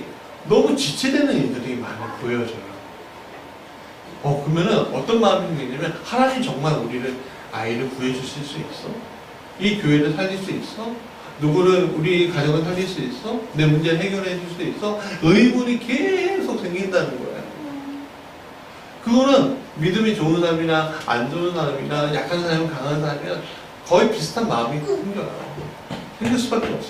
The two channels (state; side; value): identical; both; correlation 1.00